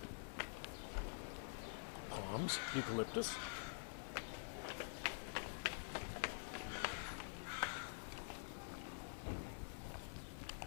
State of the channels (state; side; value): silent; right; digital silence